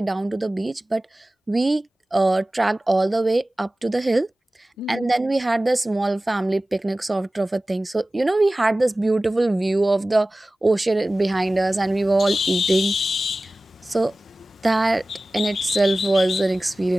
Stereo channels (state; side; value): normal; both; correlation 0.97